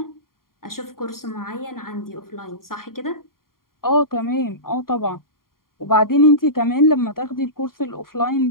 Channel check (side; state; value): right; late; 0.92 ms